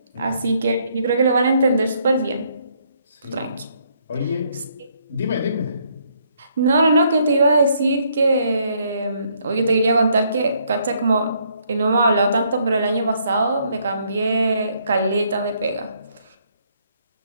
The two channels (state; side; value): inverted; both; correlation -0.70